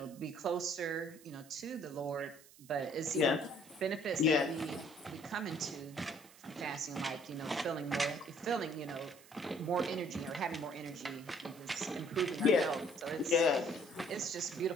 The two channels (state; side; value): noise; right; hiss, 23 dB below the sound